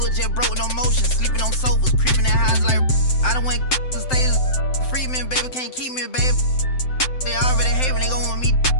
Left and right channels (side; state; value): right; late; 7.8 ms